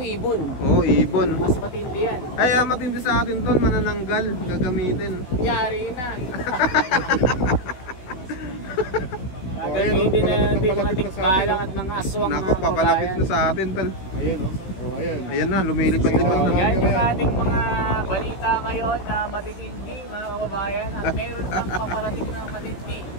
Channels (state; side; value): late; right; 16 ms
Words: ibon. Oo, ibon. Mas matindi yan. Ay, matindi sa atin tol, manananggal, gagamitin. Yari na. Gagamitin na natin mga tikbalang at mga aswang Nako, mga papalapit kabayan. na sa atin tol. Ayan, no? So, ayan. Ayan na, lumilipad-lipad So, na. yan yung ating mga balita ngayon na matitindi mga kababayan at meron pang paparating na matindi.